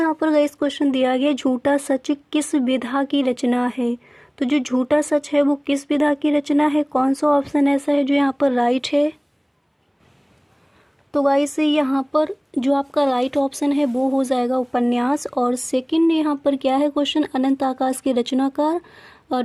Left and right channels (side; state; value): both; identical; correlation 1.00